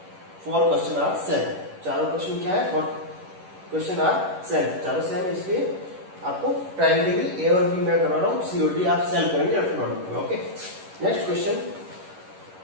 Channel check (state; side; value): late; left; 11 ms